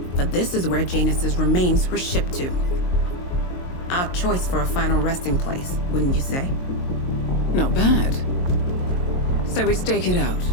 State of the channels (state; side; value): late; right; 22 ms